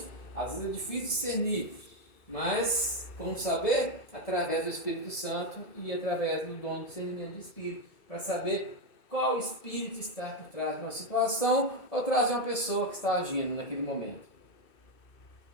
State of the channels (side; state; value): right; late; 2.2 ms